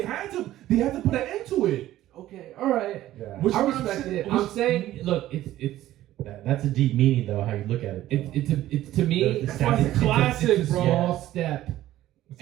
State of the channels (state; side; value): quieter; left; 14.2 dB